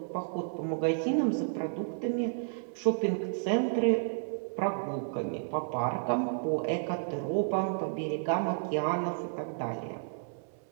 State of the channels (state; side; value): silent; left; 57 dB below the other